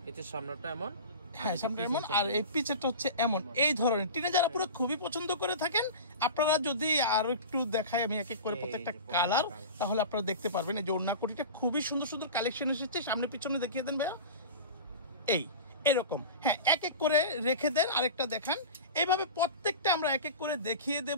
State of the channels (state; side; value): inverted; both; correlation -0.32